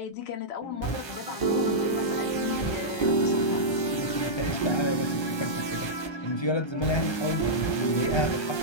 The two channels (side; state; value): right; late; 1.2 ms